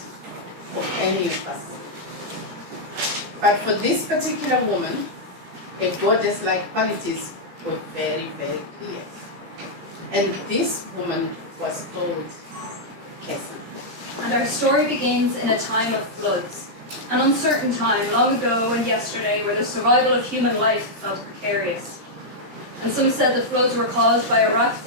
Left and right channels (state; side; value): late; left; 17 ms